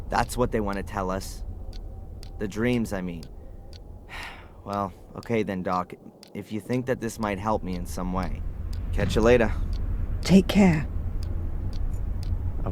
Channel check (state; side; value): identical; both; correlation 1.00